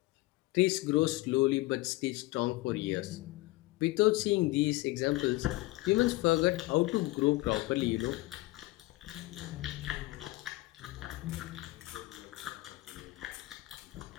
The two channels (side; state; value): right; quieter; 20.6 dB